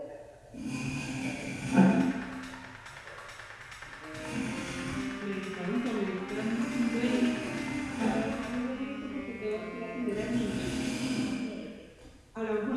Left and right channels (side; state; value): both; identical; correlation 1.00